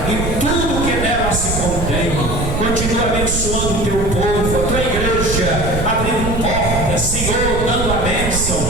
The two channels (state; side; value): noise; right; rumble, 3 dB below the sound